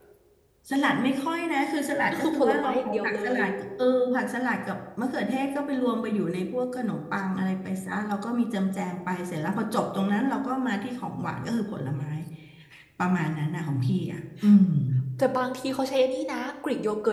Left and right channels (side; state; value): both; identical; correlation 1.00